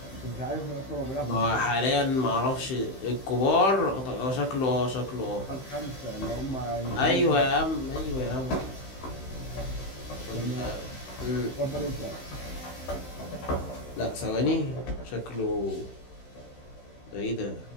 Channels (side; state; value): right; late; 15 ms